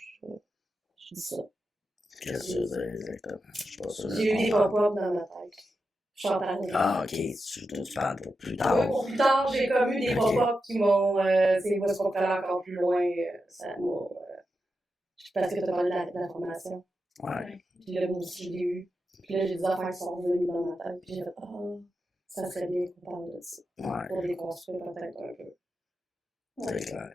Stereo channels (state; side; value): normal; both; correlation 0.88